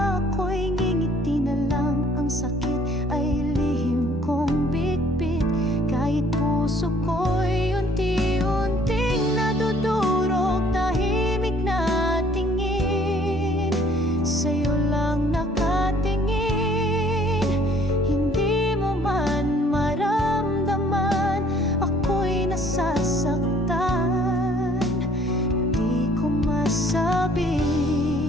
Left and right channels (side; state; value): both; normal; correlation 0.58